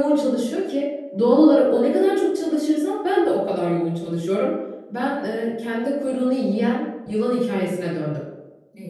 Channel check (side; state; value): both; identical; correlation 1.00